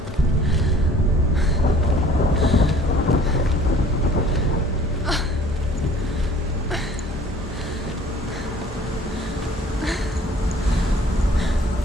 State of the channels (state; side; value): normal; both; correlation 0.52